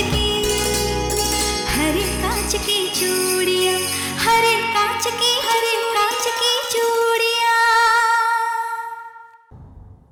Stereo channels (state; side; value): identical; both; correlation 1.00